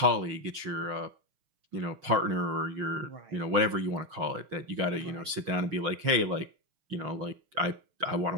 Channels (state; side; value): late; left; 6.4 ms